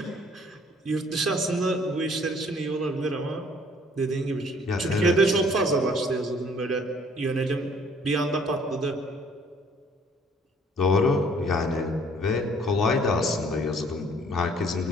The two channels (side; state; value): both; normal; correlation 0.59